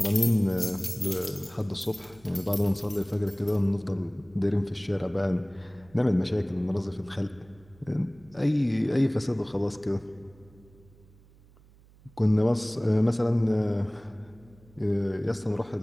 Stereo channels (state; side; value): noise; right; hum, 26 dB below the sound